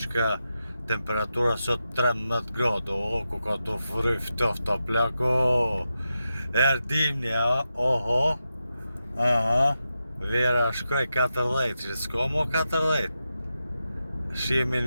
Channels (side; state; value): both; inverted; correlation -0.89